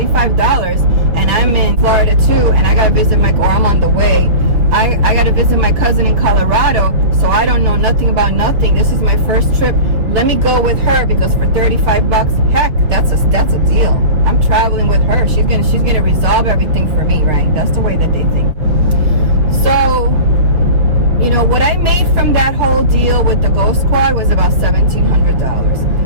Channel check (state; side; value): late; left; 6.3 ms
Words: and I'm in Florida too, and I gotta visit or I'm on the way, I gotta visit my cousin in Colorado, so I don't know nothing about nothing. This is my first trip. Let me go with her, because for $35, heck, that's a deal. I'm traveling with her. She's gonna resolve everything for me, right? That's the way that they think. So, you know, what I made from that whole deal with the Ghost Squad was about $1,700.